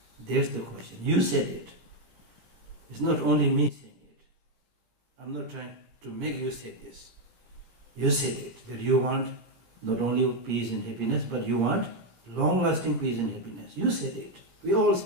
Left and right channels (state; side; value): late; left; 17 ms